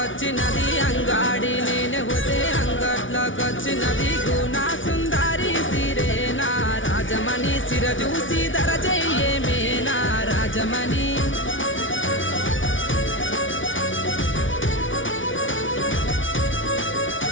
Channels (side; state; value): right; late; 0.56 ms